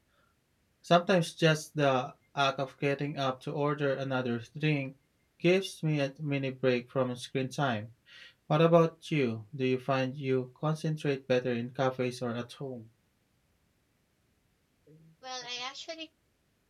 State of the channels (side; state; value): both; identical; correlation 1.00